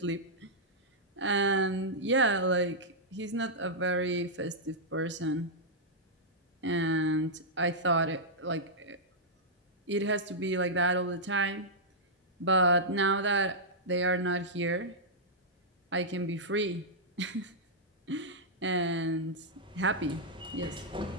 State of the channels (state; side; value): normal; both; correlation -0.09